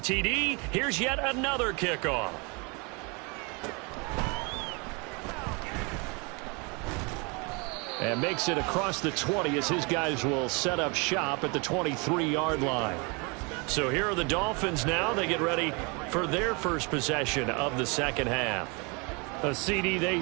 TD, here's yet another kickoff. And makes it across the 20 as his guys will set up shop at the 23-yard line. So here are the Dolphins now. They get ready for their first possession of the second half. CD, they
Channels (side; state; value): left; quieter; 30.6 dB